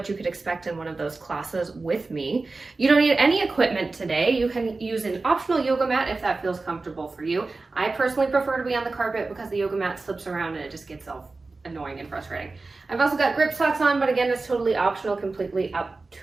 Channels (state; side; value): quieter; left; 3.6 dB